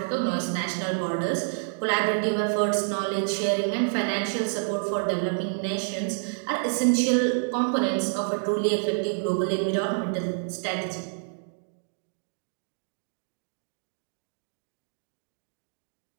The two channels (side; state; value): left; silent; digital silence